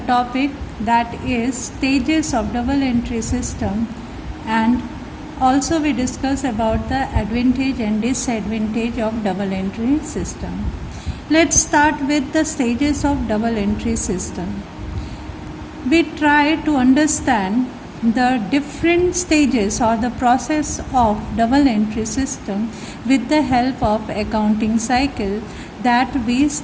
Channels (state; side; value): identical; both; correlation 1.00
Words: that is stages of double entry system, and also we discuss about the advantage and disadvantage of double entry system. Let's start with the stages of double entry system. We try to understand the different stages or the process of double entry system with the help of accounting cycle that we